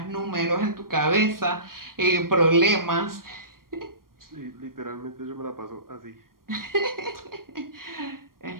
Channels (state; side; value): late; left; 0.92 ms